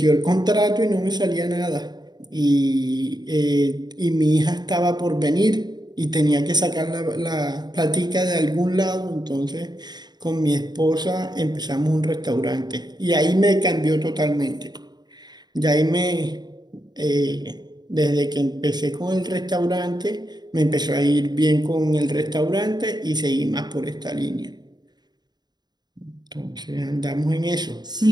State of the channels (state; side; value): late; left; 0.20 ms